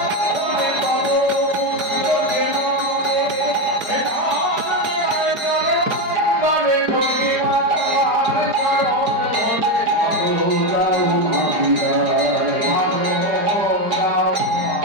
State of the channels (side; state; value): left; late; 4.8 ms